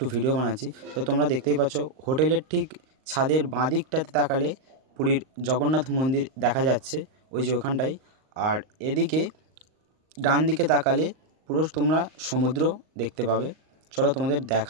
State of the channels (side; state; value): left; late; 38 ms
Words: ভিডিও বানাচ্ছি। তো তোমরা দেখতেই পাচ্ছ হোটেলের ঠিক ছাদের বাঁ দিকটাতে তাকালে পুরীর জগন্নাথ মন্দির দেখা যাচ্ছে, ওই যে ওখানটাই। আর এদিকে ডান দিকে তাকালে পুরো তোমরা সমুদ্র দেখতে পাবে। চলো তোমাদের